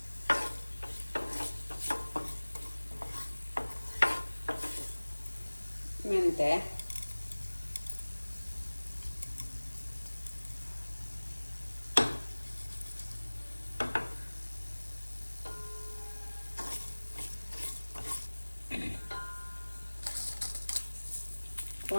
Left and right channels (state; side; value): inverted; both; correlation -1.00